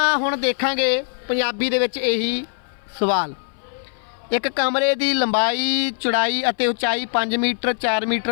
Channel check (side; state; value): right; silent; 58 dB below the other